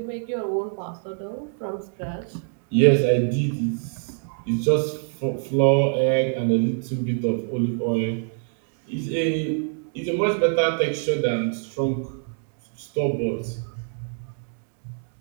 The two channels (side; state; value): left; silent; 58 dB below the other